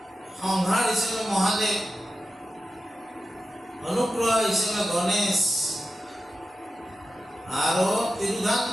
সংহাৰ হিচাপে মহাদেৱ, অনুগ্ৰহ হিচাপে গণেশ, আৰু তিৰোধান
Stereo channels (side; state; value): both; normal; correlation 0.92